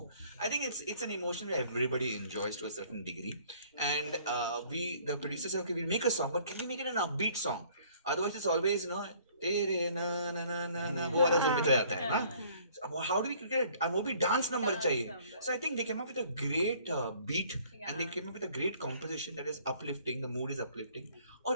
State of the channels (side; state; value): both; inverted; correlation -0.57